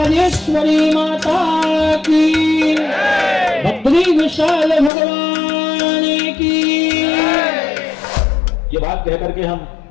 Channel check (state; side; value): drops out; right; at 4.9 s